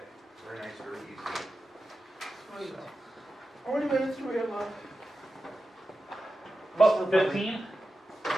Very nice, very easy. Sweet. So, How many minutes do we have left? about 15?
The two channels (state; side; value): normal; both; correlation 0.92